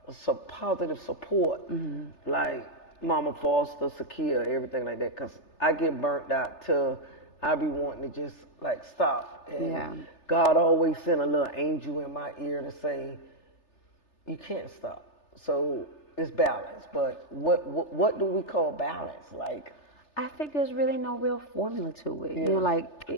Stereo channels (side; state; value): right; late; 3.3 ms